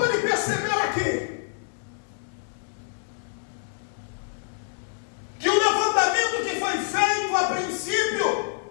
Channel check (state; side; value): silent; right; 61 dB below the other